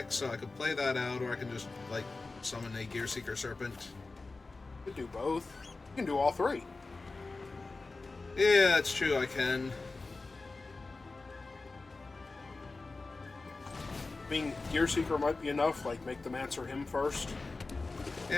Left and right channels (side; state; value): right; quieter; 3.6 dB